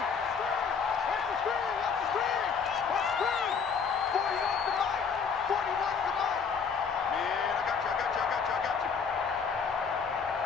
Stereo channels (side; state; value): right; quieter; 6.0 dB